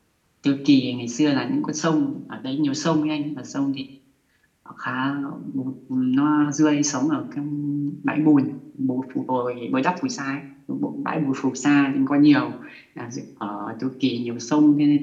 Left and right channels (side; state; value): both; identical; correlation 1.00